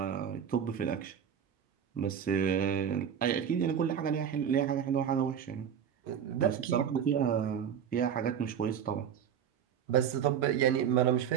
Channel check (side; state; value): left; quieter; 8.4 dB